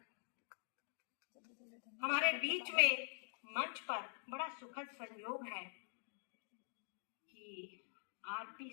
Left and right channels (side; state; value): right; silent; digital silence